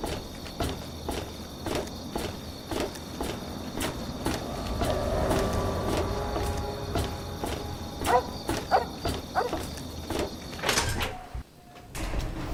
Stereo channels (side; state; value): both; identical; correlation 1.00